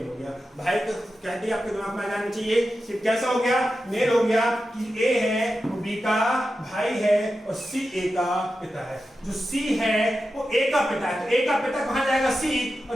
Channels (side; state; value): both; normal; correlation 0.91